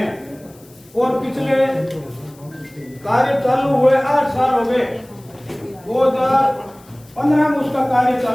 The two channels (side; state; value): left; noise; hiss, 27 dB below the sound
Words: और पिछले कार्य चालू हुए 8 साल हो गए। 2015 में उसका कार्य